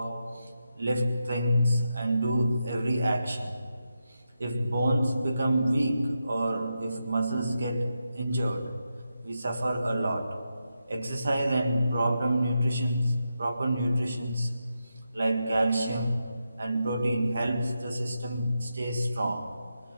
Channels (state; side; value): inverted; both; correlation -0.87